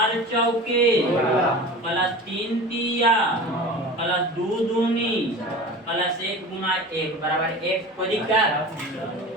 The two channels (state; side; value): normal; both; correlation 0.35